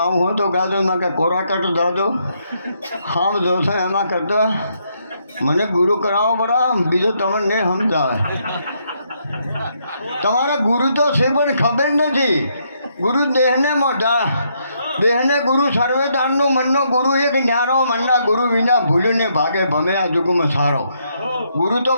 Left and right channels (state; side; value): inverted; both; correlation -0.75